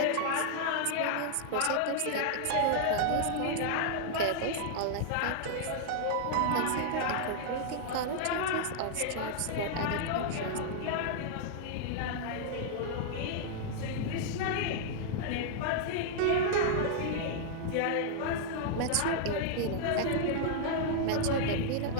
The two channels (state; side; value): different; both; correlation -0.01